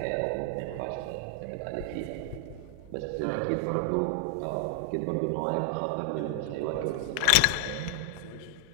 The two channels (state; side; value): different; both; correlation 0.00